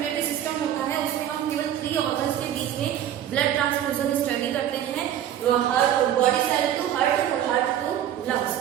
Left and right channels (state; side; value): quieter; left; 10.8 dB